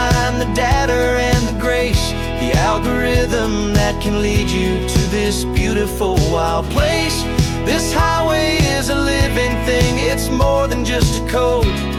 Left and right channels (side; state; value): both; identical; correlation 1.00